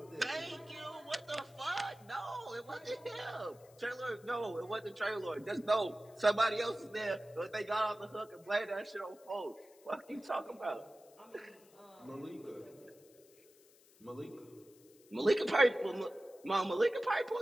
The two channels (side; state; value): left; noise; hiss, 27 dB below the sound